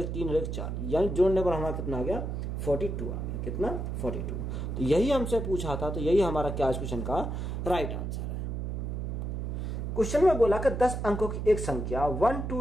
3 और 1 4, यानी जोड़ने पर हमारा कितना आ गया? 42 आ गया। कितना? 42। तो यही हमसे पूछा था, तो यही हमारा क्या इस क्वेश्चन का राइट आंसर है। क्वेश्चन में बोला कि 10 अंकों की एक संख्या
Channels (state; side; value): noise; right; hum, 3 dB below the sound